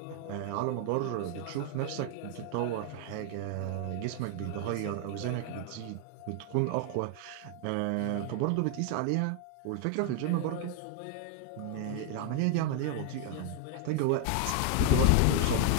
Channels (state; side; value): different; both; correlation 0.00